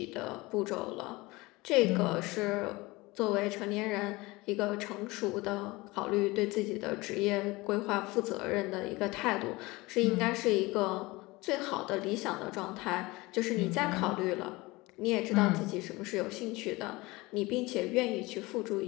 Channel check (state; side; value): quieter; right; 22.0 dB